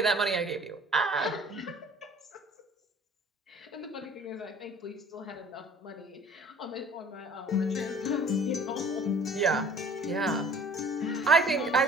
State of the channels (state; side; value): normal; both; correlation 0.50